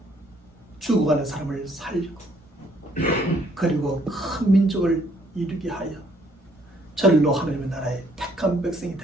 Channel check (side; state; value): both; normal; correlation 0.65